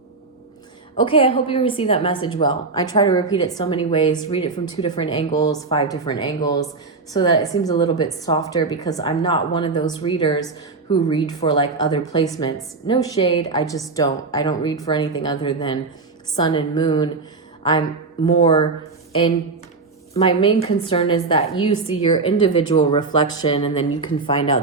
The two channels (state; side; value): quieter; left; 4.0 dB